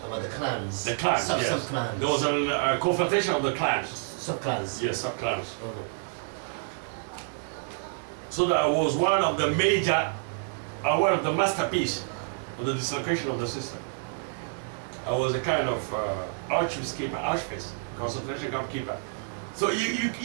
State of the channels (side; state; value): left; silent; digital silence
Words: About the clans. The clans, yes. Sub-clans. There was a confrontation of the clans. Sub-clans. Yes, sub-clans. So that was one of the major, one of the masterpiece of the dislocation of the system. I was a kind of Auschwitz concentration camp keeper. So you